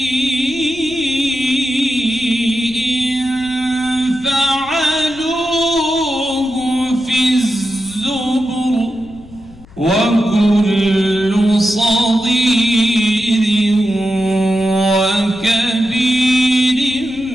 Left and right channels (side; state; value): left; noise; rumble, 22 dB below the sound